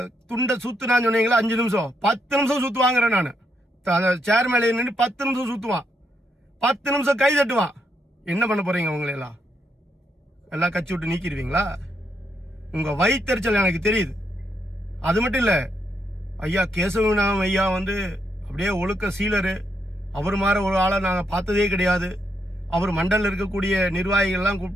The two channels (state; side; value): normal; both; correlation 0.78